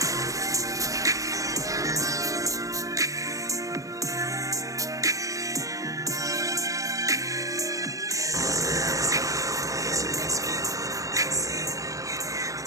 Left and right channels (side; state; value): left; late; 0.16 ms